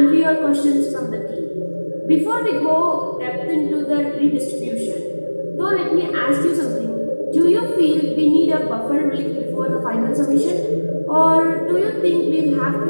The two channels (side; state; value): both; inverted; correlation -1.00